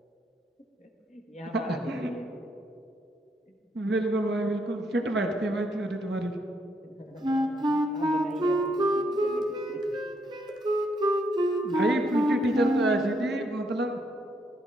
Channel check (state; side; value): normal; both; correlation 0.75